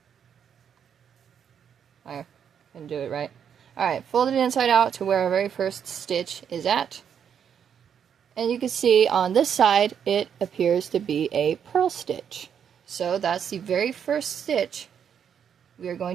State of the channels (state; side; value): quieter; left; 8.1 dB